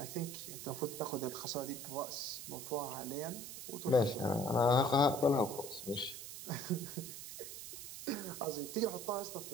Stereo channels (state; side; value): noise; right; hiss, 9 dB below the sound